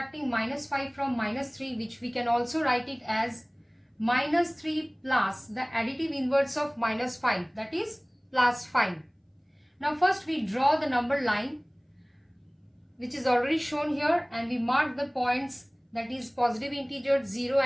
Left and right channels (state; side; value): identical; both; correlation 1.00